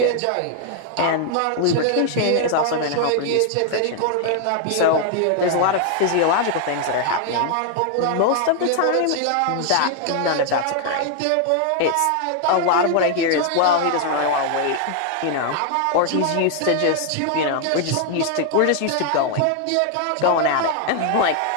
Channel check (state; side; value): different; both; correlation 0.00